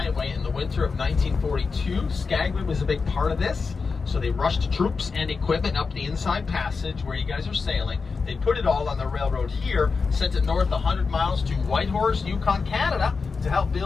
in the winter of 1942. Skagway was a big part of this. So they rushed troops and equipment up the inside passage where you guys are sailing. They put it all on the railroad here, sent it north 100 miles to Whitehorse, Yukon, Canada, to help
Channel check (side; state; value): right; quieter; 4.8 dB